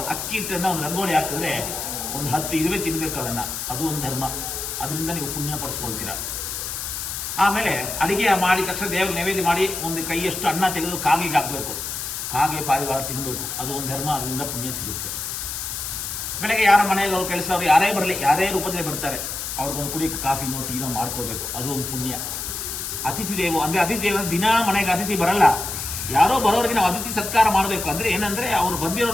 ಅಕ್ಕಿ ಹಿಟ್ಟನ್ನ ಒಂದು ರಂಗೋಲಿ ಹಾಕಿದ್ರೆ ಒಂದು 10 ಇರುವೆ ತಿನ್ಬೇಕು ಅದನ್ನ, ಅದು ಒಂದು ಧರ್ಮ. ಅದರಿಂದ ನೀವು ಪುಣ್ಯ ಪಡಿಸ್ಕೊಳ್ತೀರಾ. ಆಮೇಲೆ ಅಡಿಗೆ ಮಾಡಿದ ತಕ್ಷಣ ದೇವರಿಗೆ ನೈವೇದ್ಯ ಮಾಡಿ ಒಂದು ಕೈಯಷ್ಟು ಅನ್ನ ತೆಗೆದು ಕಾಗಿಗೆ ಹಾಕ್ಬೇಕು, ಕಾಗೆ ಪಾರಿವಾಳ ತಿನ್ಬೇಕು, ಅದು ಒಂದು ಧರ್ಮ. ಅದರಿಂದ ಪುಣ್ಯ ಸಿಗುತ್ತೆ. ಬೆಳಗ್ಗೆ ಯಾರ ಮನೆಗೆ ಅವ್ರು ಕೆಲಸ ಅವ್ರು ಯಾರೇ ಬರಲಿ, ಯಾರೇ ರೂಪದಲ್ಲಿ ಬರ್ತಾರೆ, ಅವ್ರಿಗೊಂದು ಕುಡಿಯಕ್ಕೆ ಕಾಫಿನೋ ಟೀನೋ ಮಾಡ್ಕೊಳ್ಬೇಕು, ಅದು ಒಂದು ಪುಣ್ಯ. ಅತಿಥಿ ದೇವ ಅಂದ್ರೆ ಅತಿಥಿ ದೇವ ದಿನ ಮನೆಗೆ ಅತಿಥಿ ಬರಲ್ಲ, ಯಾರೋ ಬರೋರಿಗೆ ನಾವು ಅತಿಥಿ ಸತ್ಕಾರ ಮಾಡಬೇಕು. ಅಂದ್ರೆ ಏನಂದ್ರೆ ಅವ್ರು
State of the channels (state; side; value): noise; left; hiss, 5 dB below the sound